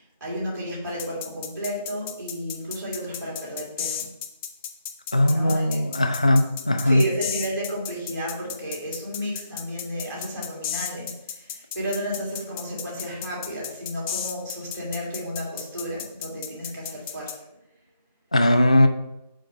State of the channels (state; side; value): inverted; both; correlation -0.82